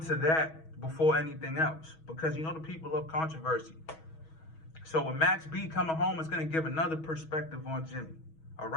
to that before anything else, because you know the people love controversy. So with Max B coming home, it's going to give another perspective on Jimmy. All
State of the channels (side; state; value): right; late; 6.2 ms